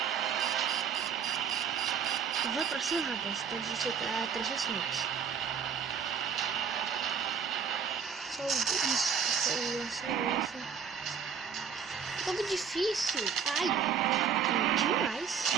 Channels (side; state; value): left; quieter; 6.9 dB